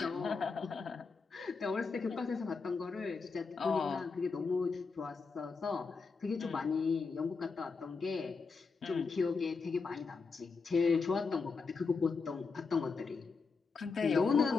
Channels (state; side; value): quieter; right; 4.7 dB